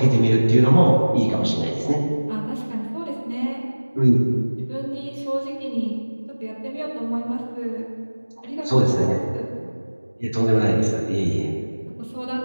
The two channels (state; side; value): inverted; both; correlation -1.00